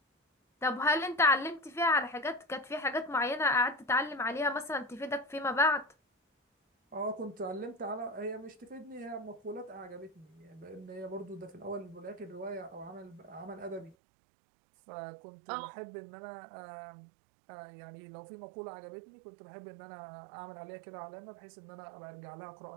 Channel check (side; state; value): left; drops out; at 14.0 s